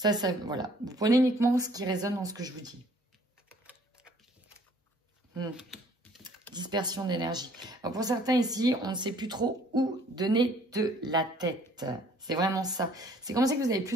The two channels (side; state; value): both; normal; correlation 0.58